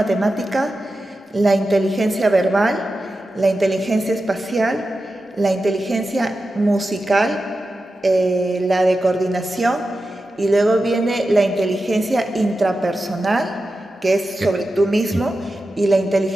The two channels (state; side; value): normal; both; correlation 0.92